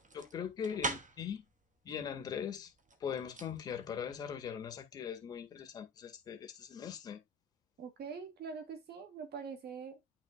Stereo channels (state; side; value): quieter; right; 3.3 dB